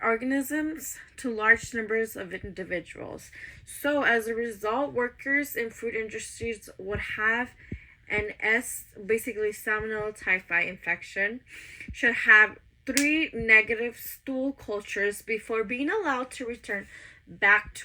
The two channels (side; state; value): both; identical; correlation 1.00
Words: to large numbers of individuals. So, as a result, workers in food industries would have an basically Salmonella typhi infection, should have 3 negative stool cultures before being allowed to return back